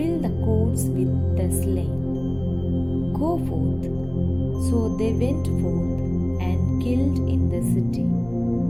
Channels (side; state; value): right; noise; rumble, 24 dB below the sound